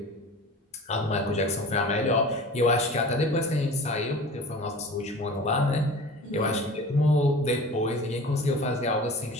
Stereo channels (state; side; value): normal; both; correlation 0.38